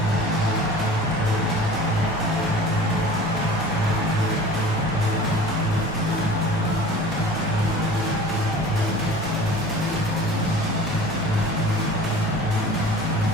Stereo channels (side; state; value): both; normal; correlation 0.42